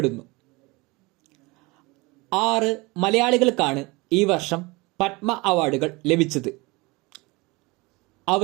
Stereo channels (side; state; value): left; quieter; 24.3 dB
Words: 6 മലയാളികൾക്കാണ് ഈ വർഷം പത്മ അവാർഡുകൾ ലഭിച്ചത്.